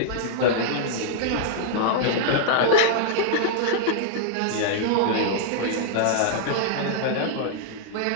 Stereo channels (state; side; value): different; both; correlation -0.01